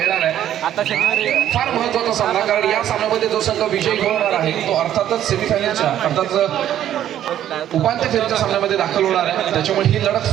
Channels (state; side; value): quieter; left; 11.3 dB